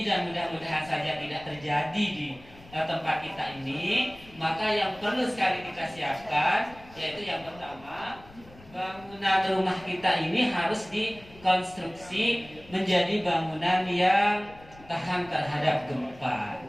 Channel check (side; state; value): left; noise; rumble, 22 dB below the sound